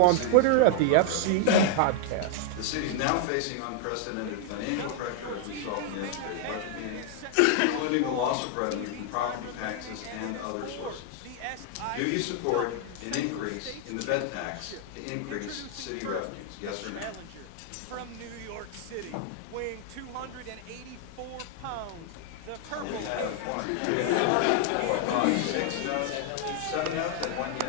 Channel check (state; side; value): different; both; correlation 0.00